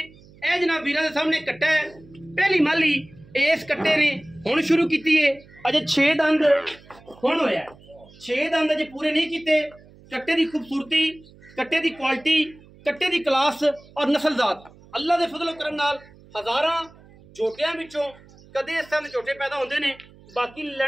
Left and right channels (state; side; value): noise; right; hum, 24 dB below the sound